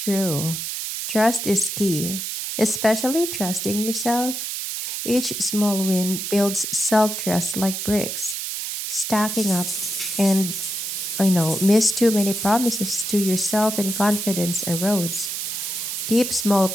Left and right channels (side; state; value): right; noise; hiss, 4 dB below the sound